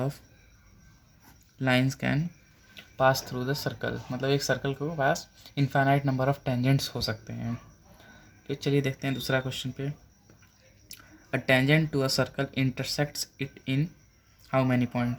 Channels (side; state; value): both; identical; correlation 1.00